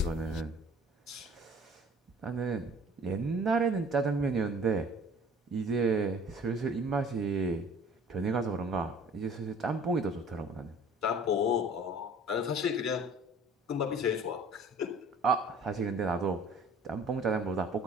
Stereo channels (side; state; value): both; normal; correlation 0.49